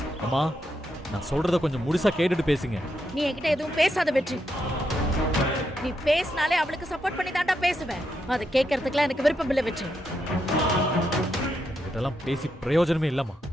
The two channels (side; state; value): both; normal; correlation 0.82